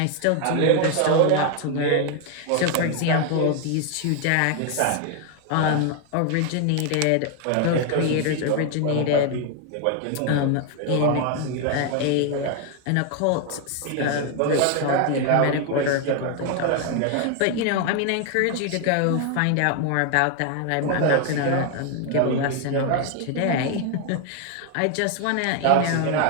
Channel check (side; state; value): both; different; correlation 0.01